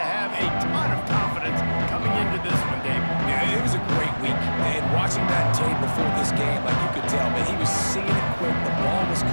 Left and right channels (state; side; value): inverted; both; correlation -1.00